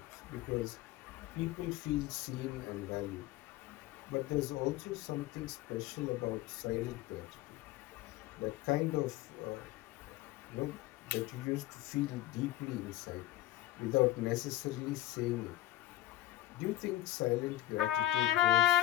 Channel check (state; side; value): quieter; right; 14.5 dB